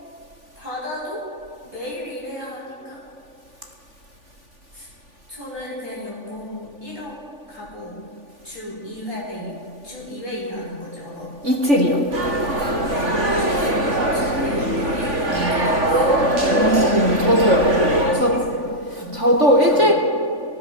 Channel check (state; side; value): late; left; 3.5 ms